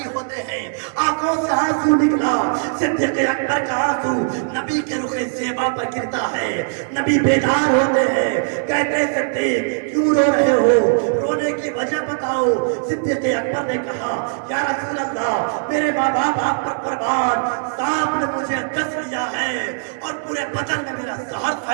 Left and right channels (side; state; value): left; silent; 61 dB below the other